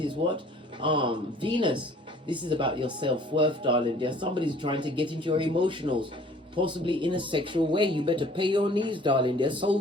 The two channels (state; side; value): normal; both; correlation 0.52